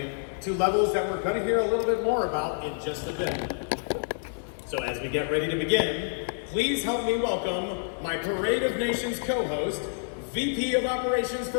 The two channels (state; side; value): silent; right; digital silence